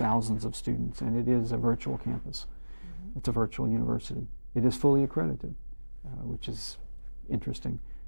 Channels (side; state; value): both; inverted; correlation -1.00